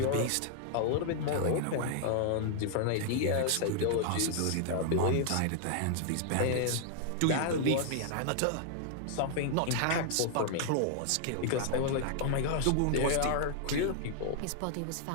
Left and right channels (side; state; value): both; different; correlation 0.00